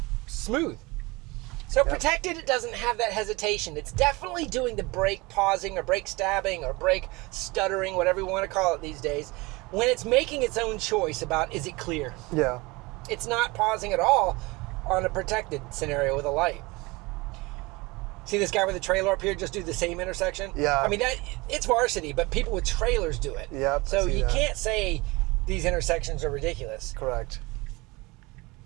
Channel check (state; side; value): quieter; left; 23.9 dB